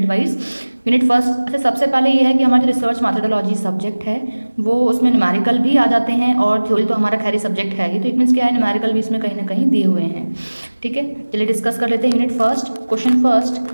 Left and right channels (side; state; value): both; inverted; correlation -1.00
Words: वाइज। यूनिट फर्स्ट, अच्छा सबसे पहले ये है कि हमारा जो रिसर्च मैथडोलॉजी सब्जेक्ट है वो उसमें न्यूमेरिकल भी आ जाते हैं और थ्योरी तो हमारा खैर सब्जेक्ट है ही, तो इट मीन्स क्या है न्यूमेरिकल भी इसमें कहीं ना कहीं दिए हुए हैं। ठीक है, चलिए डिस्कस कर लेते हैं unit first. Question first,